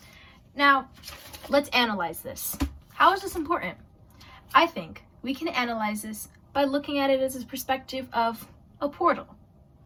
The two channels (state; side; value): identical; both; correlation 1.00